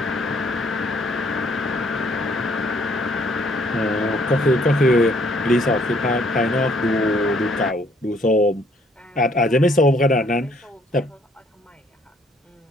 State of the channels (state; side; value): normal; both; correlation 0.65